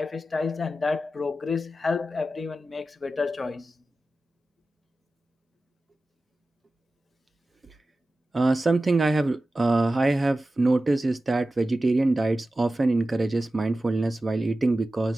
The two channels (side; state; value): both; normal; correlation 0.94